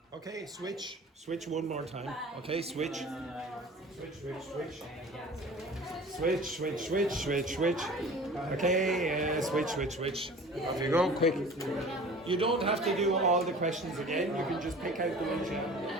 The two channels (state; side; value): normal; both; correlation 0.42